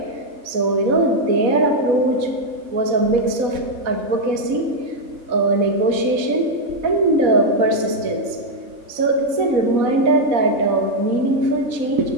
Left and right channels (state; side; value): late; left; 4.1 ms